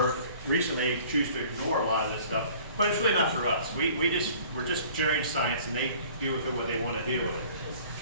recently choose to ignore a lot of this stuff. But it's really not for us. We're just generating science and they do with it what they want to do with it.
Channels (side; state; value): both; inverted; correlation -0.50